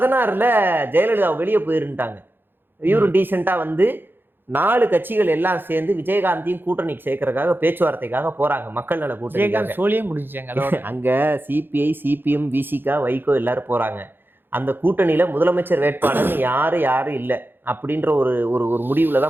ஜெயலலிதா வெளியே போயிருந்துட்டாங்க. இவரும் டீசெண்டா வந்து 4 கட்சிகள் எல்லாம் சேர்ந்து விஜயகாந்தையும் கூட்டணிக்கு சேர்க்கறதுக்காக பேச்சுவார்த்தைக்காக போறாங்க. மக்கள் நல கூட்டணி சோழியே முடிஞ்சாங்க. அங்க சிபிஐ, சிபிஎம், விசிகா, வைகோ எல்லாரும் போறாங்க. அந்த கூட்டணியில முதலமைச்சர் வேட்பாளர்னு யாரும் இல்லை அப்படின்ற ஒரு முடிவுல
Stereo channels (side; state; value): left; late; 0.099 ms